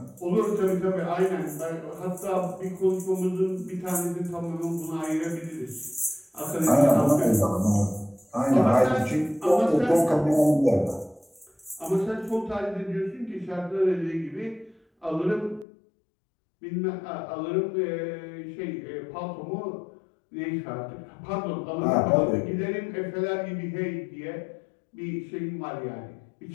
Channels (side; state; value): right; drops out; at 15.7 s